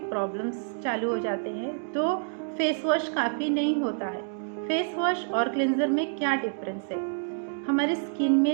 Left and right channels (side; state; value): left; silent; 59 dB below the other